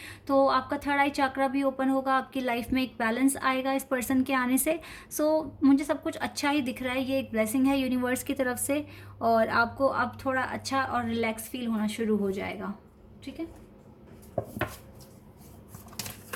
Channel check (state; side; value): identical; both; correlation 1.00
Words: तो आपका थर्ड आई चक्रा भी ओपन होगा, आपकी लाइफ में एक बैलेंस आएगा इस पर्सन के आने से। सो मुझे सब कुछ अच्छा ही दिख रहा है, ये एक ब्लेसिंग है यूनिवर्स की तरफ से, और आपको अब थोड़ा अच्छा और रिलैक्स फील होना शुरू हो जाएगा, ठीक है।